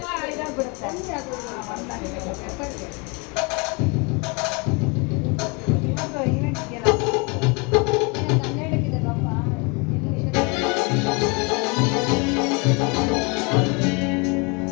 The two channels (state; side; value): quieter; right; 30.9 dB